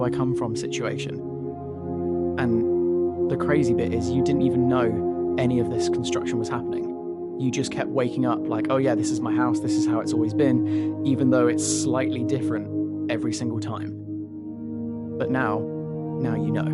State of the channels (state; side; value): identical; both; correlation 1.00